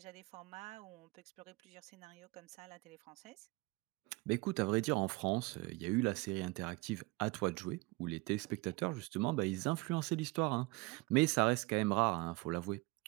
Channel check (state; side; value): quieter; left; 24.1 dB